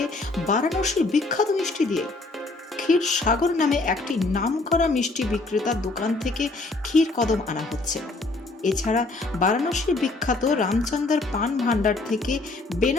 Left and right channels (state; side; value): quieter; right; 3.3 dB